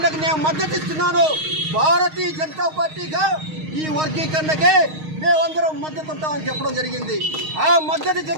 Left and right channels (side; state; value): left; late; 6.4 ms